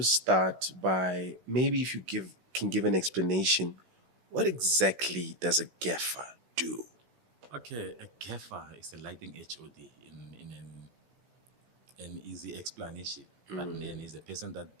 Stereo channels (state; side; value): late; left; 16 ms